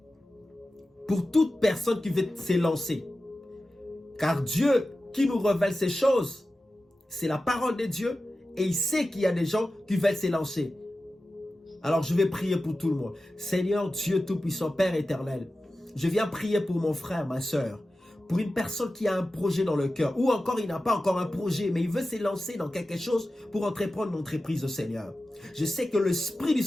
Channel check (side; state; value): both; normal; correlation 0.94